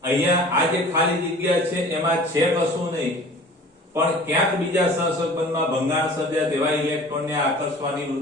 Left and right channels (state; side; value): normal; both; correlation 0.44